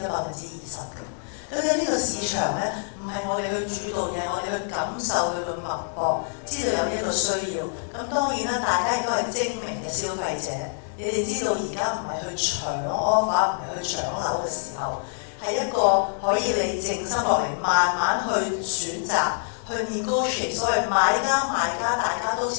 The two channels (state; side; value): silent; right; digital silence